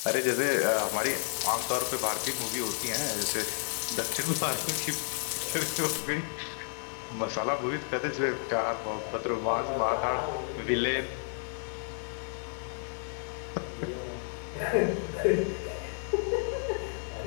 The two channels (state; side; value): silent; right; 57 dB below the other